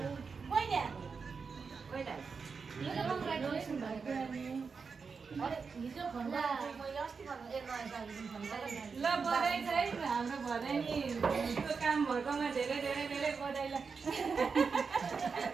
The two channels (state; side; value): quieter; left; 5.2 dB